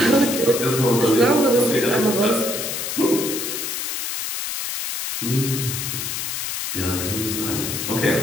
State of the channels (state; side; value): noise; left; hiss, 4 dB below the sound